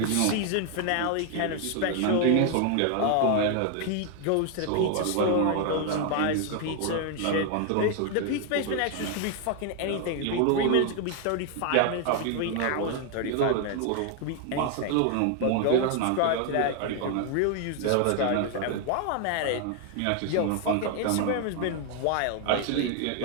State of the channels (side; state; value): both; different; correlation 0.00